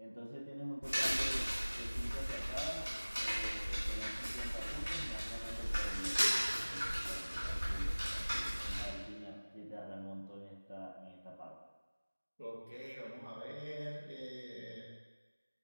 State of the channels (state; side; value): inverted; both; correlation -1.00